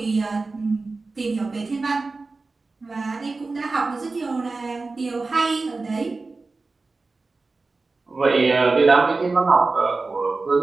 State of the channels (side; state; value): left; quieter; 3.7 dB